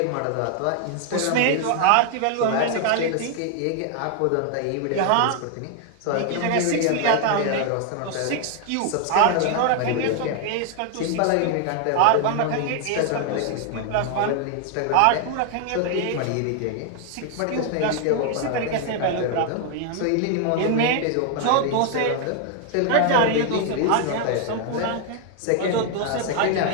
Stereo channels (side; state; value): both; different; correlation 0.00